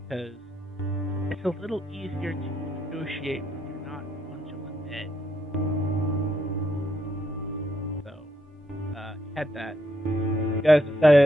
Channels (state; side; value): normal; both; correlation 0.76